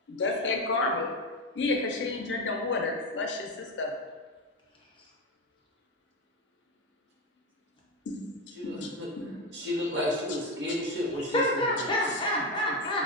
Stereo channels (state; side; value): normal; both; correlation 0.14